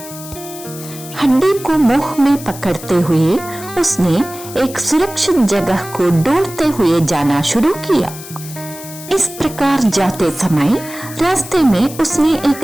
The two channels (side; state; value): left; noise; hiss, 14 dB below the sound